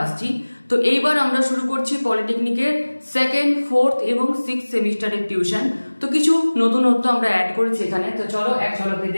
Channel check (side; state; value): both; inverted; correlation -1.00